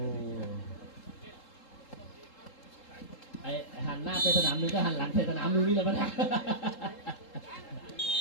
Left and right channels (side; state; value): right; late; 3.7 ms